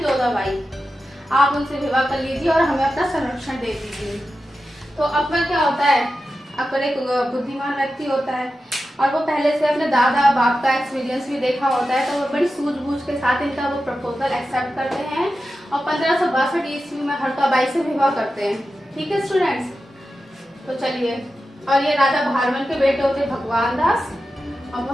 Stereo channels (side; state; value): both; normal; correlation 0.91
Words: आप उनसे विवाह कर लीजिए और हमें अपना संरक्षण दे दीजिए। तो अकबर क्या होता है, अकबर एक बुद्धिमान व्यक्ति होता है और वो पहले से अपने दादा बाप का एक्सपीरियंस भी देखा होता है। तो वो बड़ी सूझबूझ के साथ इनका वो प्रपोजल एक्सेप्ट करते हैं और 1562 ईस्वी में हरकाबाई से विवाह करते हैं। ठीक है स्टूडेंट्स, तो चलिए। और ये राजा भारमल के बेटे होते भगवान दास और